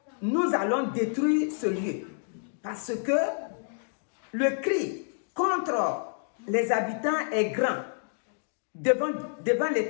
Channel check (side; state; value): right; silent; digital silence